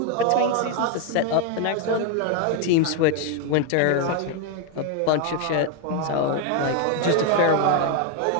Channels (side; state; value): both; different; correlation 0.01